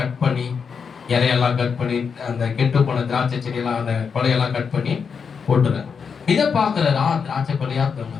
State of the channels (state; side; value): quieter; right; 6.1 dB